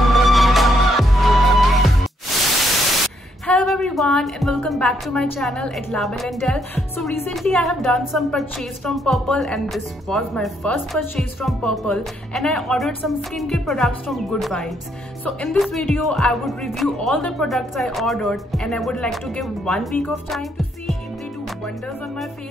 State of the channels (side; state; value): both; normal; correlation 0.73